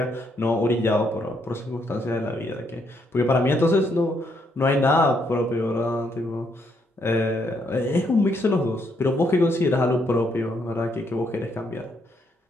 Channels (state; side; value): normal; both; correlation 0.74